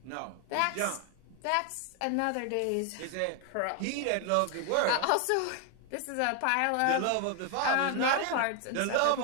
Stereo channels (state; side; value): different; both; correlation 0.01